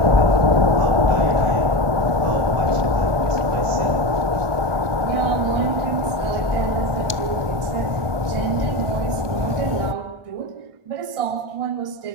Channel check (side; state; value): left; late; 1.2 ms